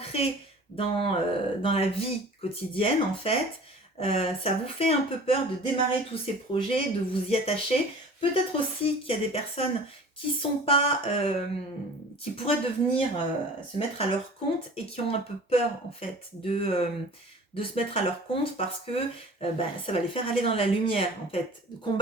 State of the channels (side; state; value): both; normal; correlation 0.43